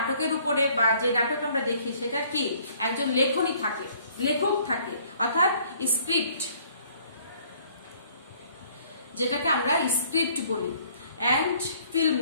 উপরে বা যে নাটক আমরা দেখি সেটার কি একজন লেখনী থাকে, লেখক থাকে অর্থাৎ স্ক্রিপ্ট, যেটাকে আমরা স্ক্রিপ্ট বলি, অ্যান্ড ফিল্ম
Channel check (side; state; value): both; inverted; correlation -0.59